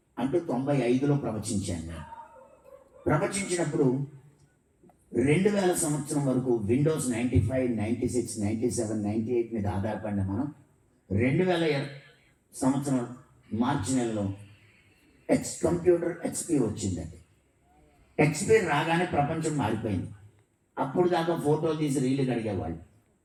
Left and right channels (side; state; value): both; identical; correlation 1.00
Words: అంటూ 95లో ప్రవచించాను నేను. ప్రవచించినప్పుడు 2000 సంవత్సరం వరకు విండోస్ 95, 96, 97, 98 మీద ఆధారపడిన మనం 2000 సంవత్సరం మార్చి నెలలో కంప్యూటర్ ఎక్స్పీ వచ్చిందండి. ఎక్స్పీ రాగానే ప్రపంచం మారిపోయింది. అప్పుడు దాకా ఫోటోలు తీసి రీళ్లు కడిగేవాళ్ళు,